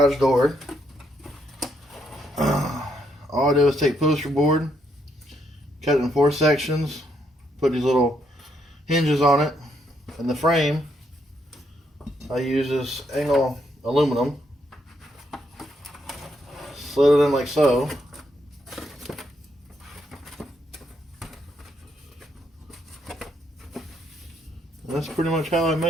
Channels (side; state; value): both; normal; correlation 0.75